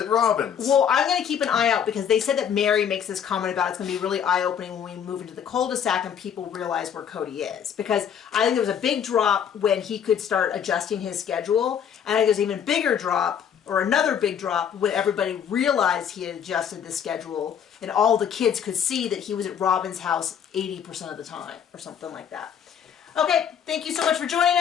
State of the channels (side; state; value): right; quieter; 8.3 dB